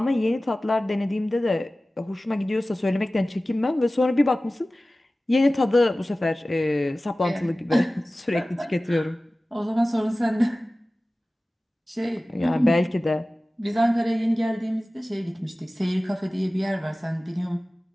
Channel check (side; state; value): both; normal; correlation 0.97